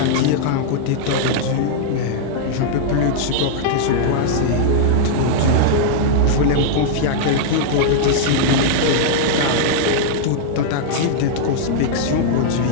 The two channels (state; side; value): different; both; correlation -0.01